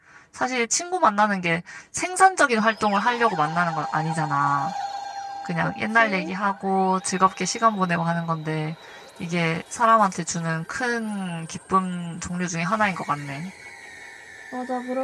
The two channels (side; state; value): both; identical; correlation 1.00